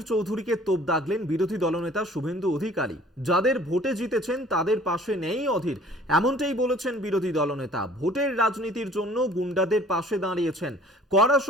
চৌধুরীকে তোপ দাগলেন বিরোধী দলনেতা শুভেন্দু অধিকারী। যাদের ভোটে জিতেছেন তাদের পাশে নেই অধীর, এমনটাই বলেছেন বিরোধী দলনেতা। ভোটের রাজনীতির জন্য গুন্ডাদের পাশে দাঁড়িয়েছেন, কড়া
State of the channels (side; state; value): both; normal; correlation 0.52